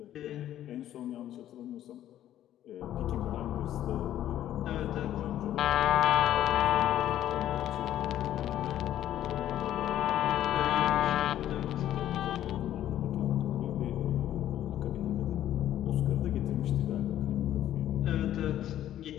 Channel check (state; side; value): quieter; right; 12.0 dB